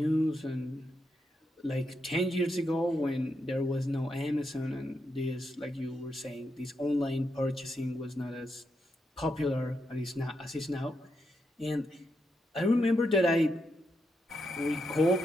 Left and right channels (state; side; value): normal; both; correlation 0.82